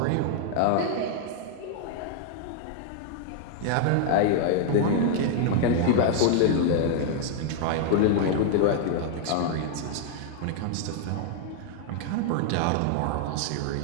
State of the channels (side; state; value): both; different; correlation 0.00